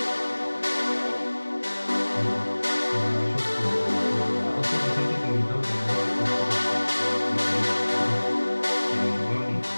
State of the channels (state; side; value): inverted; both; correlation -1.00